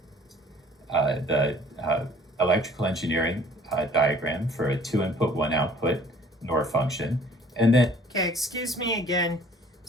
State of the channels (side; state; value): both; normal; correlation 0.54